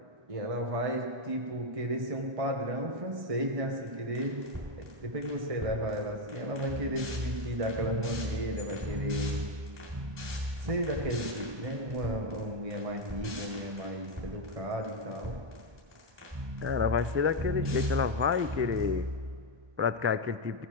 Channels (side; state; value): left; late; 1.2 ms